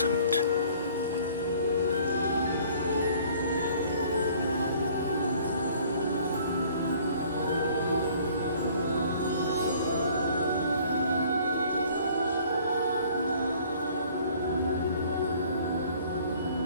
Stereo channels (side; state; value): both; inverted; correlation -0.55